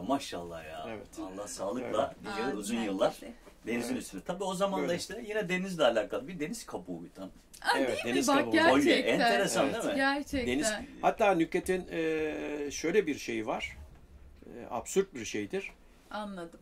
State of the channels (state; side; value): identical; both; correlation 1.00